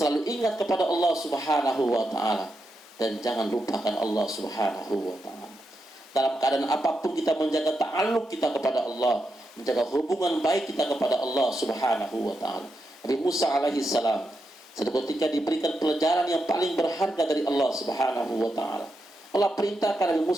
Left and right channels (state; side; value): normal; both; correlation 0.85